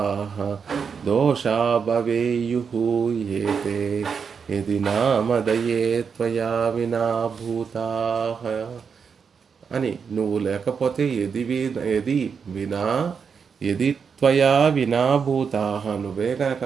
దోషా భవేయుః ఏతే యది నామదయే త్వయా వినా భూతాః అని. నువ్వు లేకపోతే యది త్వయా వినాభూతాః, నువ్వే కనుక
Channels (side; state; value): left; quieter; 6.2 dB